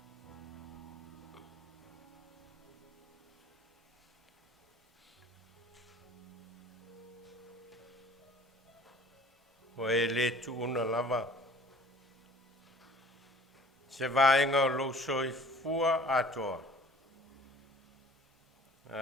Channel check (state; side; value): normal; both; correlation 0.50